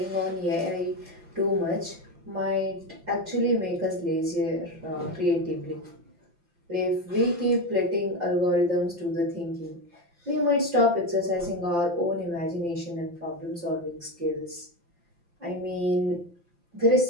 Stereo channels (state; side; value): late; left; 5.8 ms